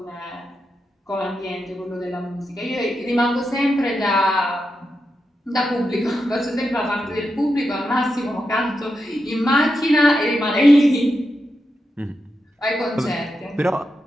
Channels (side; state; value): both; normal; correlation 0.87